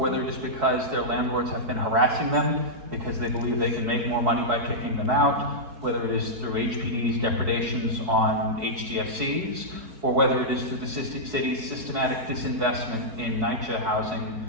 it is because their landlords have been harassing them because they believe they can make more money by kicking them out, whether it is through HPD's depredations on HDFCs, or whether it is through the city's systematic disinvestment in NYCHA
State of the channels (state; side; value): late; left; 4.7 ms